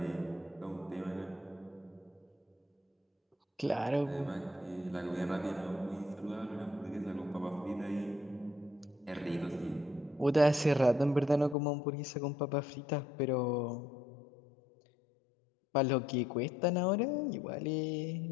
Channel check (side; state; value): right; drops out; at 11.6 s